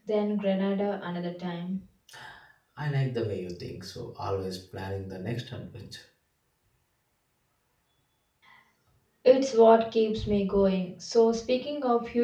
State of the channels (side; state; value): both; identical; correlation 1.00